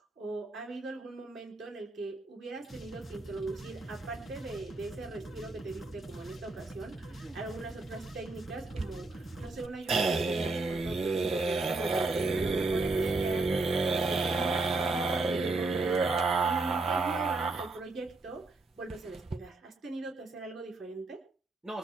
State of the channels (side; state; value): left; quieter; 3.3 dB